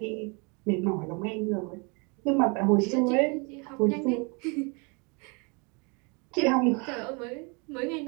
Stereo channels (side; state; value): left; quieter; 32.1 dB